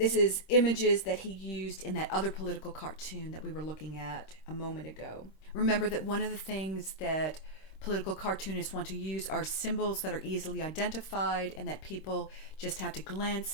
is images that he used in that other political cartoon that we were looking at a moment ago. Remember that one of the things that political cartoonists want to use are symbols that are easily identified and that people just have to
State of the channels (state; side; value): late; right; 26 ms